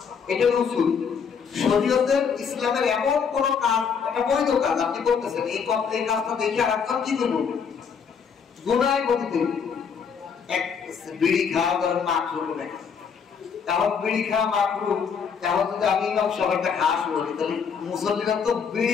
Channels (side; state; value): right; quieter; 6.4 dB